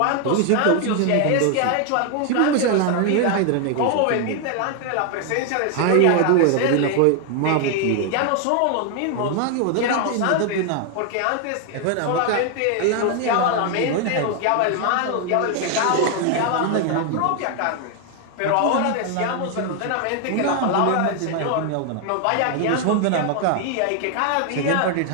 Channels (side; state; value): both; different; correlation 0.00